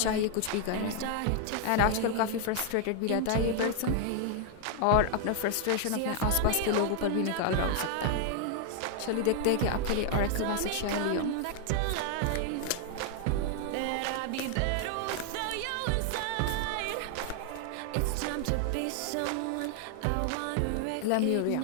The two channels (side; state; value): both; different; correlation 0.00